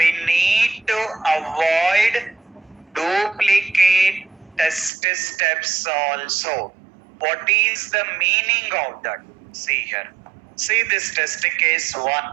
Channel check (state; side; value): drops out; left; at 4.9 s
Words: need to avoid duplicate test steps also. What is the meaning of that? See here. See this test case 1.